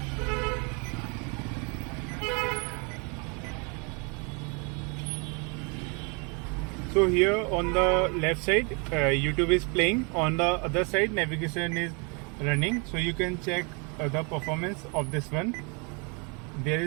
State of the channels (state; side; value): quieter; left; 33.4 dB